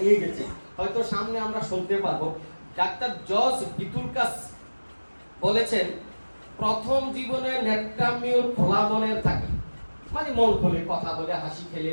নিয়ে গেছে, হয়তো সামনে আমরা শুনতে পারবো। ডাক্তার জর্জ ভিতুলকাস বলেছেন, প্রথম জীবনে ন্যাট্যামিউর খোলা মনের থাকে, মানে মন খুলে কথা বলে, হাসি খেলে,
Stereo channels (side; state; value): both; inverted; correlation -1.00